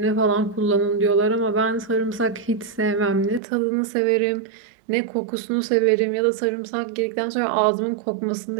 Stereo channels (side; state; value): left; drops out; at 3.4 s